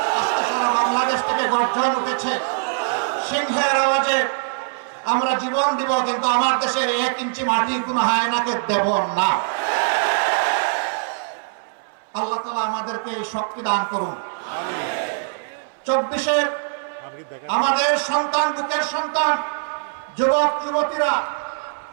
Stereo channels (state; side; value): silent; left; 60 dB below the other